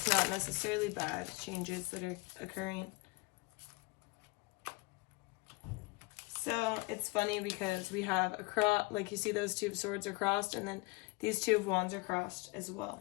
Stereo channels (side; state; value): right; quieter; 25.5 dB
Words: not necessarily bad changes that are occurring. So it's funny because we have a cross, like you see those 2 of Swords are crossed, and then these 2 of Wands are crossed as